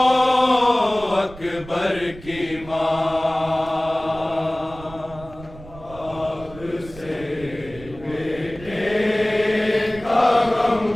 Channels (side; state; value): right; noise; rumble, 17 dB below the sound